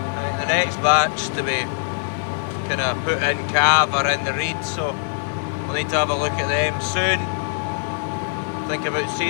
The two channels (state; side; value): silent; right; digital silence